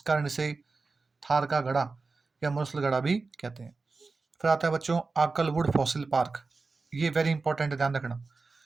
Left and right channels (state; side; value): quieter; left; 4.0 dB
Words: कारण इसे थार का गड़ा या मुरसल गड़ा भी कहते हैं। फिर आता है बच्चों आकलवुड फॉसिल पार्क। ये वेरी इंपॉर्टेंट है, ध्यान रखना।